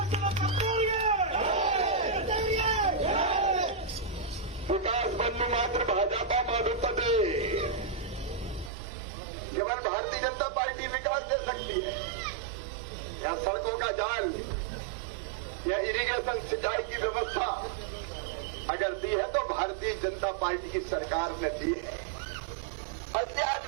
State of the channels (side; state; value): left; drops out; at 8.7 s